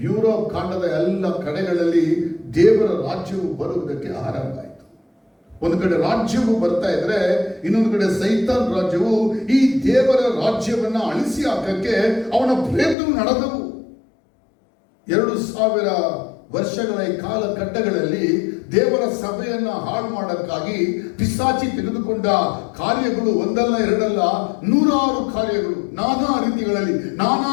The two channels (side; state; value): right; drops out; at 13.0 s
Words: ಯುರೋಪ್ ಖಂಡದ ಎಲ್ಲ ಕಡೆಗಳಲ್ಲಿ ದೇವರ ರಾಜ್ಯವು ಬರುವುದಕ್ಕೆ ಆರಂಭ ಆಯಿತು. ಒಂದು ಕಡೆ ರಾಜ್ಯವು ಬರ್ತಾ ಇದ್ರೆ ಇನ್ನೊಂದು ಕಡೆ ಸೈತಾನ್ ರಾಜ್ಯವು ಈ ದೇವರ ರಾಜ್ಯವನ್ನ ಅಳಿಸಿ ಹಾಕಕ್ಕೆ ಅವನ ಪ್ರಯತ್ನ ನಡೆದವು. 2000 ವರ್ಷಗಳ ಈ ಕಾಲಘಟ್ಟಗಳಲ್ಲಿ ದೇವರ ಸಭೆಯನ್ನ ಹಾಳು ಮಾಡಕ್ಕಾಗಿ ಪಿಶಾಚಿ ತೆಗೆದುಕೊಂಡ ಕಾರ್ಯಗಳು ಒಂದಲ್ಲ ಎರಡಲ್ಲ, 100 ಕಾರ್ಯಗಳು, ನಾನಾ ರೀತಿಗಳಲ್ಲಿ, ನಾನಾ